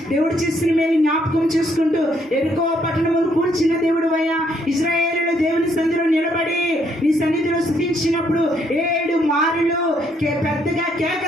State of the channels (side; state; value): both; normal; correlation 0.71